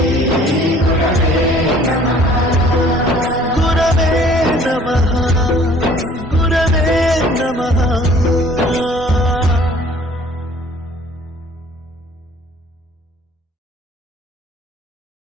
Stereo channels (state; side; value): normal; both; correlation 0.54